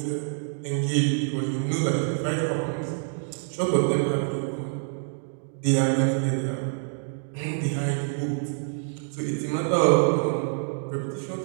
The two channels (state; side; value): silent; left; digital silence